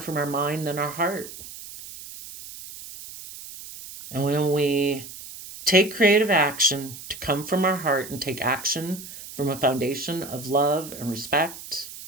our mind than our heart. And when we take creative action to come from our heart and take action from a foundation of love and respect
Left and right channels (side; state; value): right; noise; hiss, 13 dB below the sound